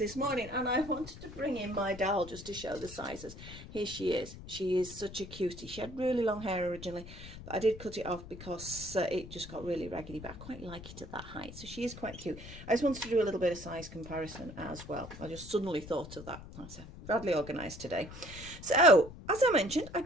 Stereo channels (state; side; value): noise; left; rumble, 14 dB below the sound